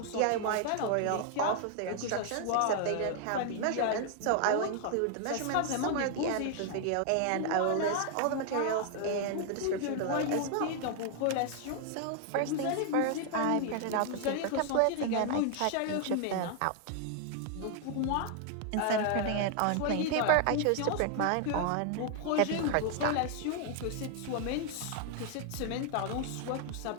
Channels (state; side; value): different; both; correlation 0.00